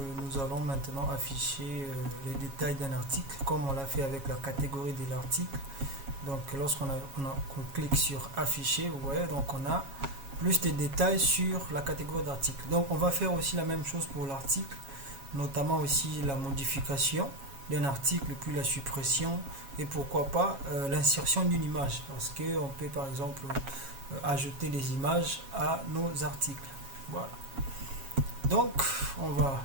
nous allons maintenant afficher les détails d'un article, comme on l'a fait avec la catégorie de l'article. Qu'on clique sur afficher, vous voyez, donc on a plus de détails sur la catégorie d'article. Donc, on va faire aussi la même chose pour l'article, notamment aussi la modification d'un article, puis la suppression et pourquoi pas l'insertion d'une image, parce qu'on peut par exemple ajouter des images à nos articles. Voilà. Donc, on va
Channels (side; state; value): left; late; 7.3 ms